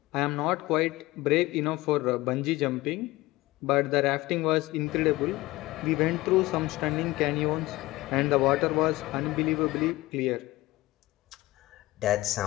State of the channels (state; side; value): quieter; right; 19.1 dB